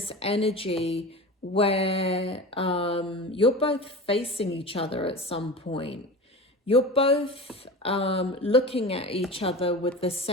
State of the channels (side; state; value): both; normal; correlation 0.31